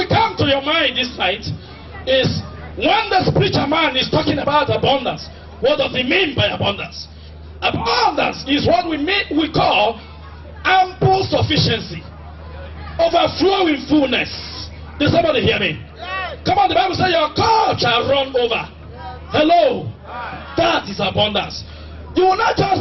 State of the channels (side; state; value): both; identical; correlation 1.00